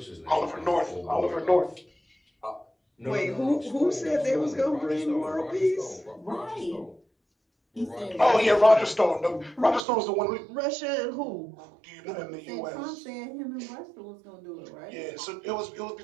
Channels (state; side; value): drops out; left; at 9.8 s